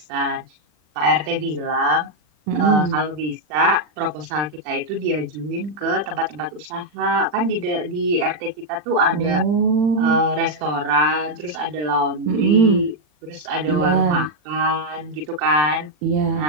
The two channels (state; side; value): late; left; 40 ms